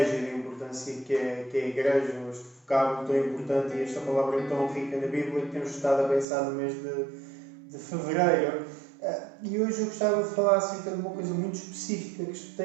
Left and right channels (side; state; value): left; drops out; at 6.2 s